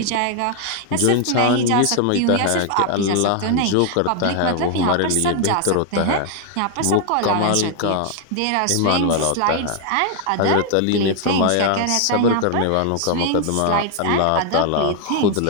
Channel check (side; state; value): both; different; correlation 0.00